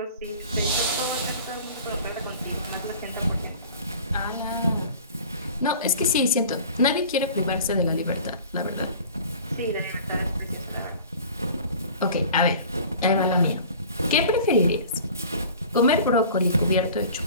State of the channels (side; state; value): both; inverted; correlation -0.43